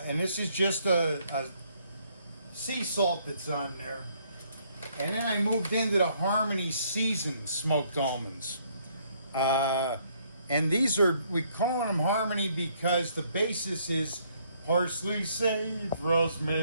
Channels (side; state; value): both; inverted; correlation -0.67